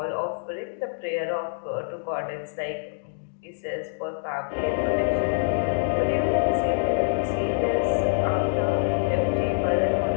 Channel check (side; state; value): right; silent; digital silence